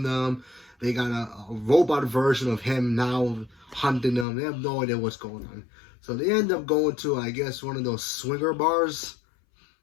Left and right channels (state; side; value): drops out; right; at 4.2 s